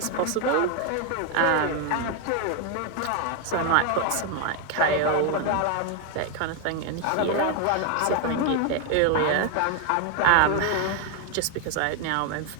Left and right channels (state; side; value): different; both; correlation 0.01